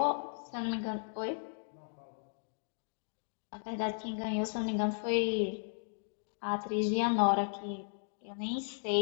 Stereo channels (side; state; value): right; silent; digital silence